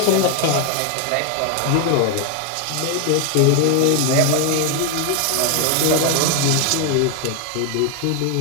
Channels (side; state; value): both; different; correlation 0.01